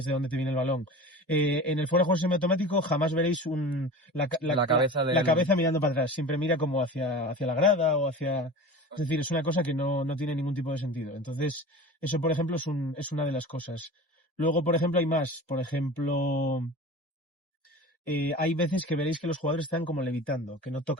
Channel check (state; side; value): normal; both; correlation 0.35